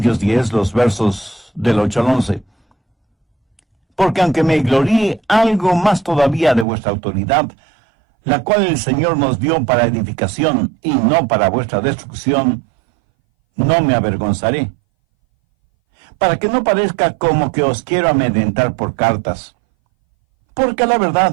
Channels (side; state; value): left; drops out; at 6.7 s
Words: 10, los versos del 8 al 11. Porque aunque me gloríe algo más todavía de vuestra autoridad, la cual el Señor nos dio para edificación y no para vuestra destrucción, no me avergonzaré, para que no parezca como que os quiero amedrentar por cartas. Porque a la